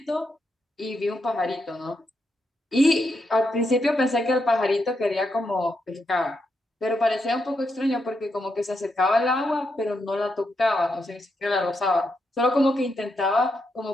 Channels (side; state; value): both; normal; correlation 0.82